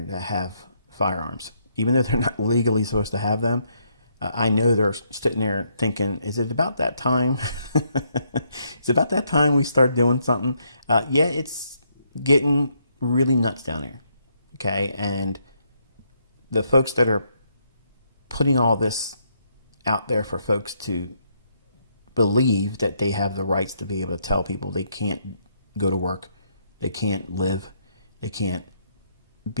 that have firearms. Even though they're not legally supposed to have them, I know they're sitting there thinking, is it about that time? Is it about that time we start doing something? Yeah, it's getting really nuts down there. Okay? And the folks that are putting all this out there for folks to believe that they have the rights to be able to tell people they can't go to work, they can't live, they can't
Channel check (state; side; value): inverted; both; correlation -0.74